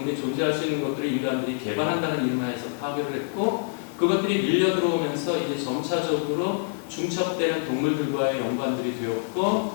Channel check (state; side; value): silent; right; 61 dB below the other